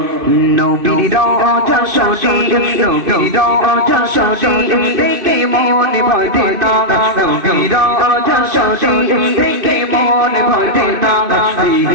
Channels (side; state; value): left; late; 2.5 ms